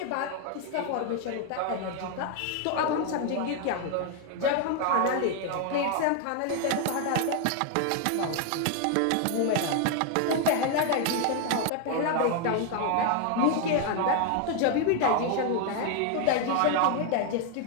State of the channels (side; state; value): both; different; correlation 0.00